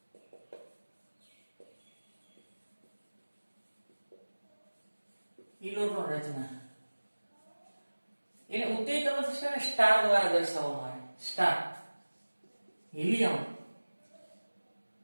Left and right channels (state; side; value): inverted; both; correlation -1.00